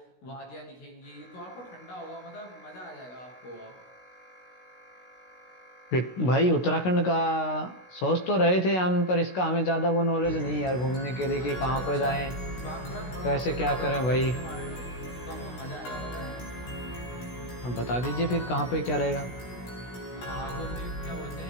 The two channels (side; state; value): right; late; 16 ms